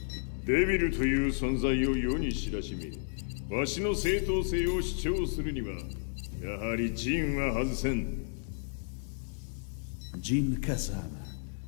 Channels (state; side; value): silent; right; digital silence